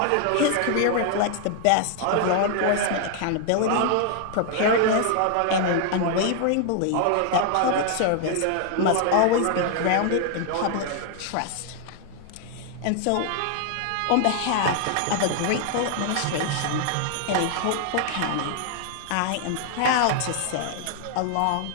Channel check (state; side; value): different; both; correlation 0.00